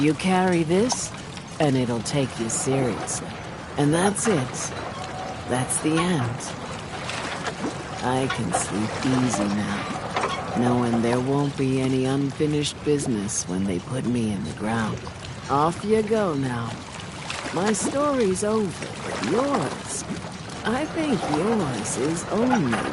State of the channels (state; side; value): identical; both; correlation 1.00